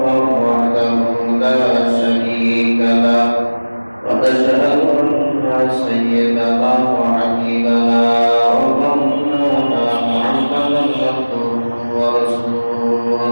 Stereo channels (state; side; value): inverted; both; correlation -1.00